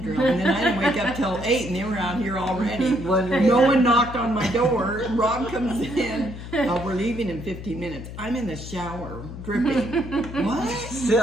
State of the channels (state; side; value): noise; left; hum, 11 dB below the sound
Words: And then I didn't wake up till 8 and they were out here already. Wondering- No one knocked on my door. Rob comes in. We're leaving in 15 minutes. I'm in the shower, dripping. What?